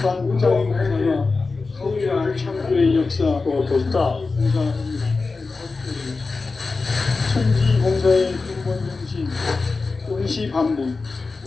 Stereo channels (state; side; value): quieter; right; 4.0 dB